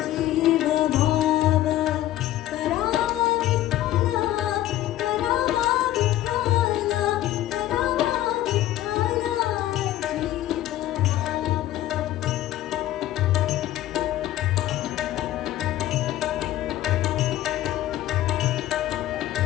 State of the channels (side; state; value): right; quieter; 13.9 dB